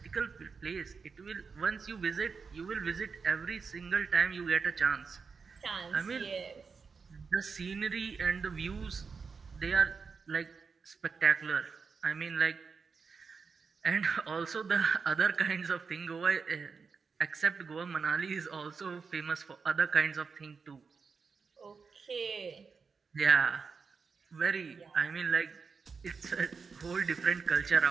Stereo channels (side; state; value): left; quieter; 5.2 dB